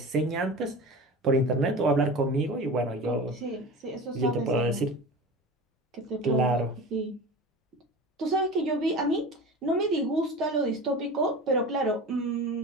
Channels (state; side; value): normal; both; correlation 0.33